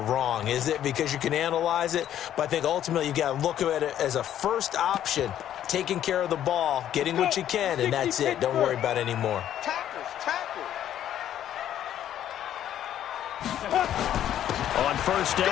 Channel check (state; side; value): quieter; right; 11.1 dB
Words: is it? Because you can analyze it, but I think ultimately you got to look at it as a first option, taking care of the ball, getting what you can, and that's it. Don't worry about it anymore. Tackles. On first